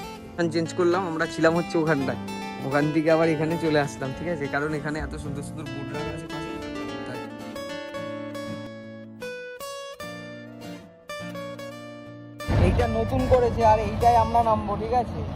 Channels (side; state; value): both; identical; correlation 1.00